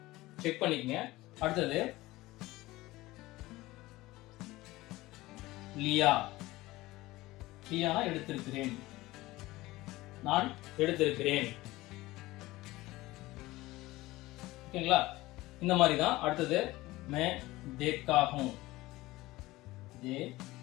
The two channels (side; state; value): right; quieter; 18.8 dB